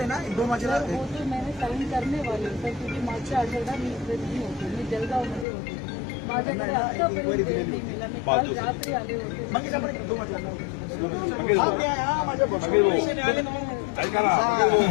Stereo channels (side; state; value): right; drops out; at 5.5 s